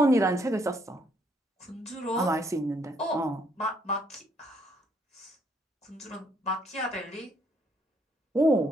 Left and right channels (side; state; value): both; normal; correlation 0.69